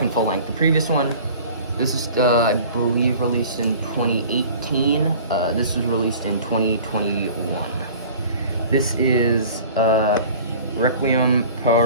full length. The previous one, this is I believe released in 2018. This was released in 2021. This is Requiem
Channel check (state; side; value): inverted; both; correlation -0.44